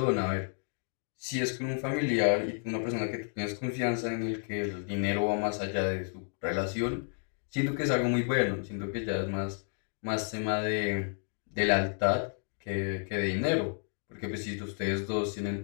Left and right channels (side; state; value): right; silent; 57 dB below the other